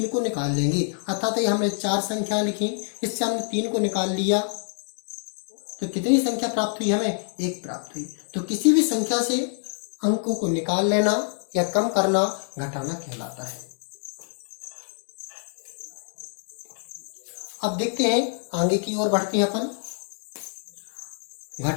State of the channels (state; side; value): silent; right; 61 dB below the other